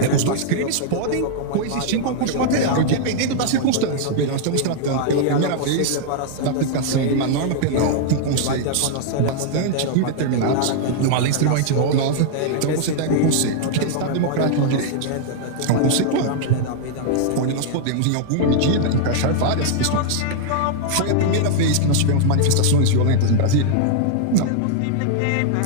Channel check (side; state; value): both; different; correlation -0.01